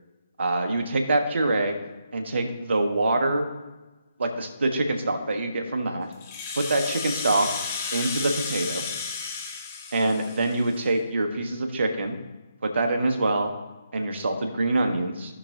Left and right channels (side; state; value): both; inverted; correlation -0.80